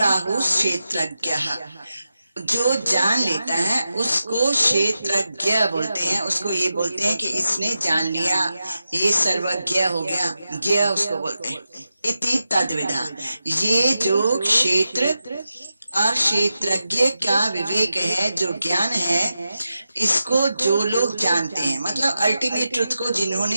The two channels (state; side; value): inverted; both; correlation -0.90